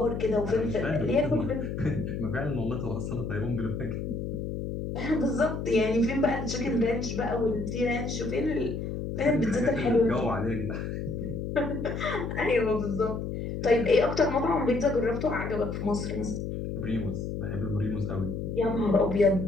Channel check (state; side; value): noise; left; hum, 4 dB below the sound